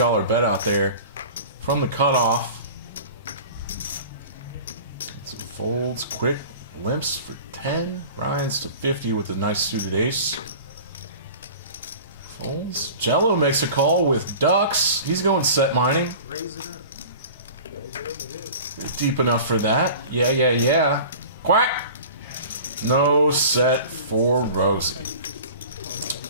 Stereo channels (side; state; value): both; inverted; correlation -0.40